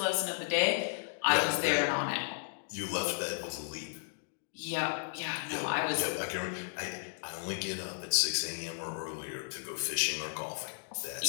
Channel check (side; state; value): right; silent; digital silence